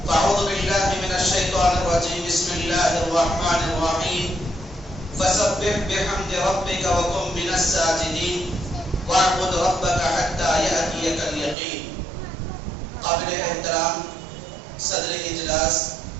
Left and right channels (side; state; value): left; drops out; at 11.6 s